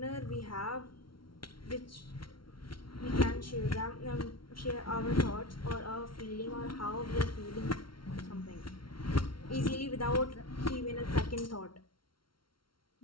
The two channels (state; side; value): late; right; 0.74 ms